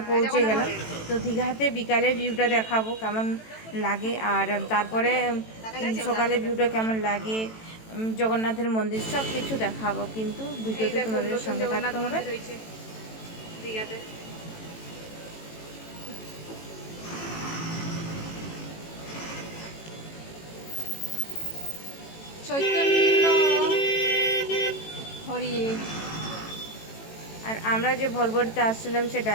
পৌঁছে গেলাম, তো দীঘাতে বিকালের ভিউটা দেখাবো কেমন লাগে, আর তারপরে সকালে ভিউটা কেমন লাগে, জগন্নাথের মন্দির সব কিছু দেখাবো। কিন্তু ভিডিওতে তোমাদের সঙ্গে থাকতে হবে। দীঘাতে চৈতন্য হরি। আর আমরা যে ভলভোতে আসছিলাম, সে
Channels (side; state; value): right; late; 18 ms